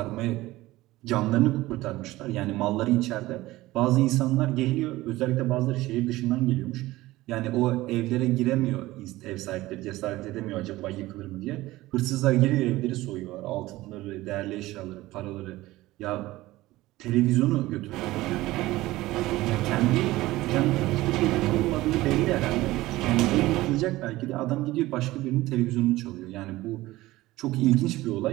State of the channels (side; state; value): left; quieter; 17.9 dB